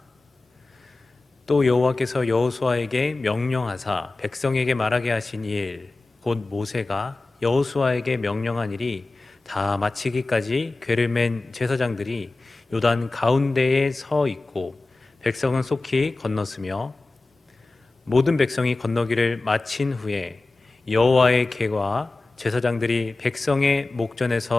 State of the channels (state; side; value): quieter; right; 3.2 dB